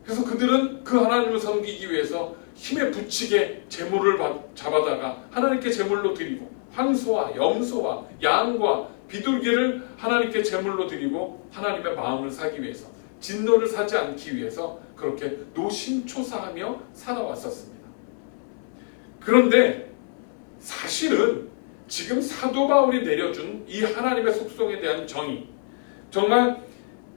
그래서 그들은 그 하나님을 섬기기 위해서 힘에 부치게 제물을 잡아다가 하나님께 제물로 드리고 황소와 염소와 양과 비둘기를 하나님께 제물로 드리고 하나님의 마음을 사기 위해서, 진노를 사지 않기 위해서 그렇게 노심초사하며 살아왔었습니다. 그런데 사실은 지금 사도 바울이 내려준 이 하나님의 속성에 대한 정의, 정말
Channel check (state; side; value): silent; right; 61 dB below the other